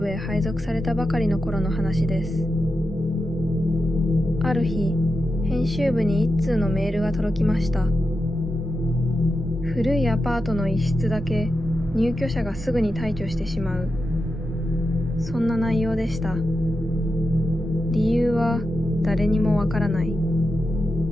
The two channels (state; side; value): normal; both; correlation 0.89